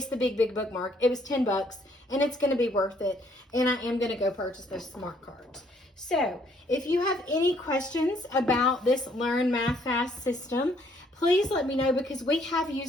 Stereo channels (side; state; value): both; normal; correlation 0.66